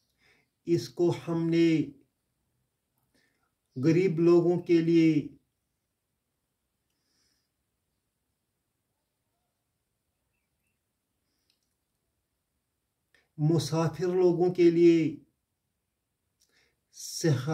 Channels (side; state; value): both; identical; correlation 1.00